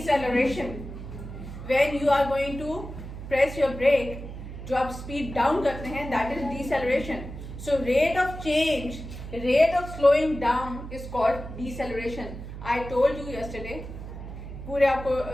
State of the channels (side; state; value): right; noise; hum, 10 dB below the sound